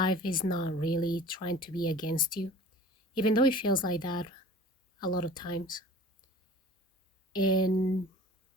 is not really trying to be against you, even though it feels like that a lot of times. And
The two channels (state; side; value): normal; both; correlation 0.43